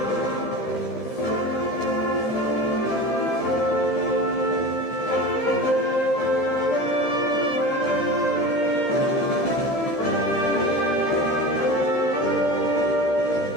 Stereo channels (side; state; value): right; late; 13 ms